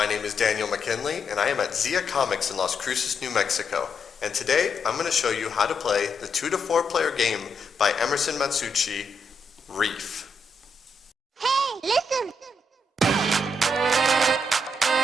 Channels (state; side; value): normal; both; correlation 0.79